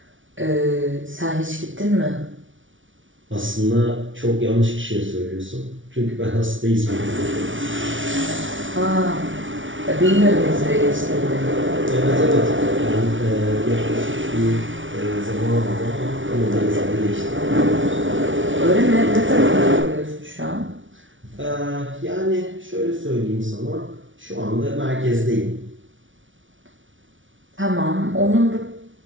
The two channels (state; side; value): late; left; 0.56 ms